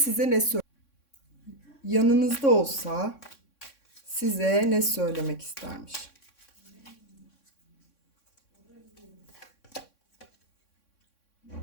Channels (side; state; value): right; late; 3.6 ms